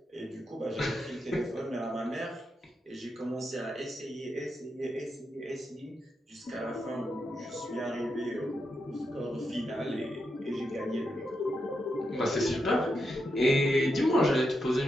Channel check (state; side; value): normal; both; correlation 0.84